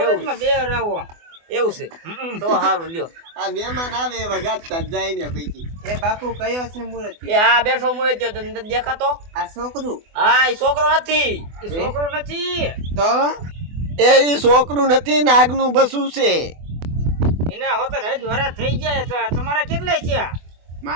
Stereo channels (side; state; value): left; late; 24 ms